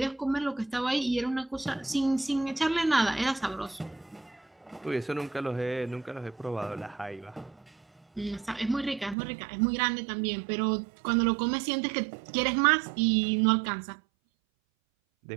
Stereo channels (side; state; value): left; drops out; at 9.2 s